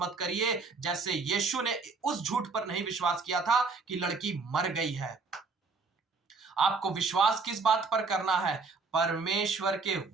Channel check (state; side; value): quieter; left; 4.3 dB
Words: करिए, जैसे यीशु ने उस झूठ पर नहीं विश्वास किया था कि लड़की मर गई है। आपको विश्वास किस बात पर करना है? परमेश्वर के